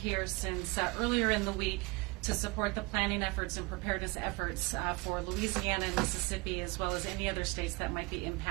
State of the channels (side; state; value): left; quieter; 26.0 dB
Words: here since earlier in the week to support the planning efforts and preparedness efforts for Louisiana and Mississippi, as well as any other states that might be